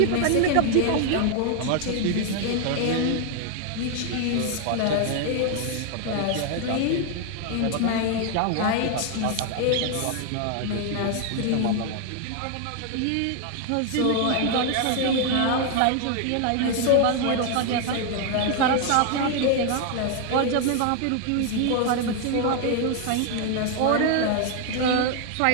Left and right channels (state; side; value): different; both; correlation 0.00